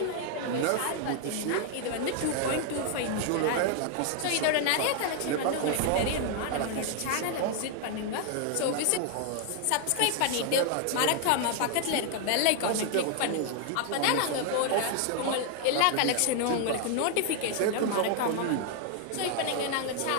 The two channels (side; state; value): both; different; correlation 0.00